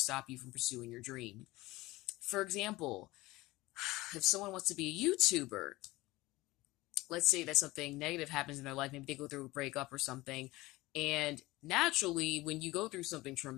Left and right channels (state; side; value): quieter; right; 19.6 dB